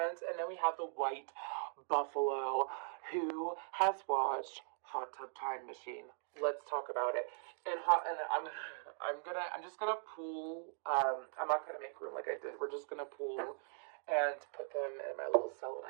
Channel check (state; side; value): silent; left; 51 dB below the other